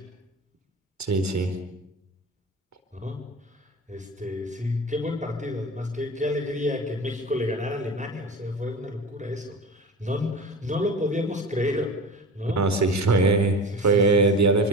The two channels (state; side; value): normal; both; correlation 0.33